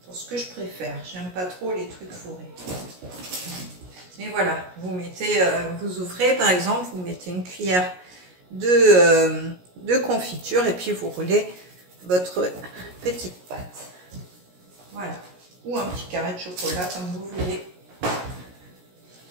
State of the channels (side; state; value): left; late; 17 ms